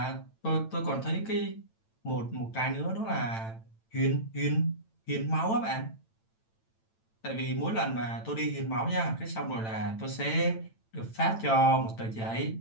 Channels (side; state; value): right; late; 9.0 ms